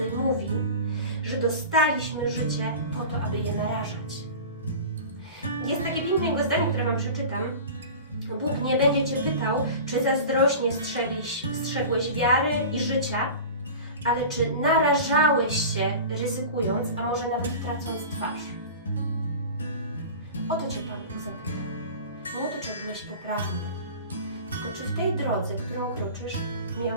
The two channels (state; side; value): inverted; both; correlation -0.35